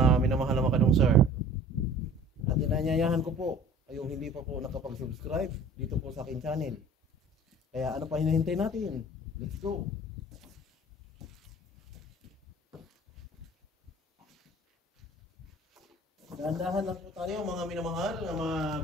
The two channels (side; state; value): both; normal; correlation 0.46